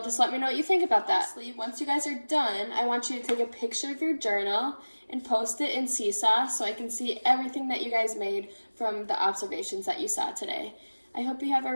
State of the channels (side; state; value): both; inverted; correlation -1.00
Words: just let me know what you think about that. Lastly, once you guys are done, I want you to take a picture of your journal and post it in Seesaw so I can see everything that you guys made from the observations that you saw today. I hope you have